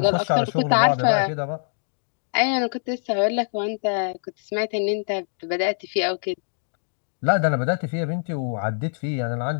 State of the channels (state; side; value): silent; right; digital silence